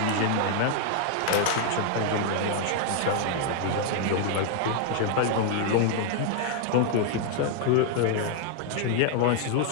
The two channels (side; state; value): both; different; correlation 0.00